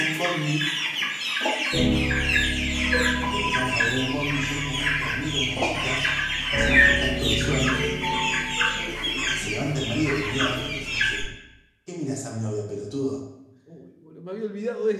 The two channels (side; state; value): both; identical; correlation 1.00